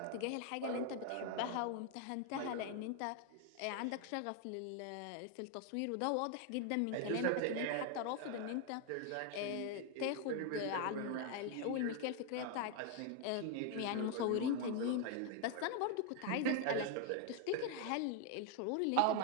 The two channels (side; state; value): both; different; correlation 0.01